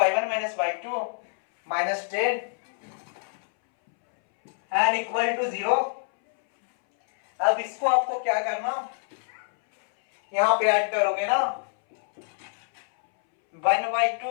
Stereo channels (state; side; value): silent; right; 61 dB below the other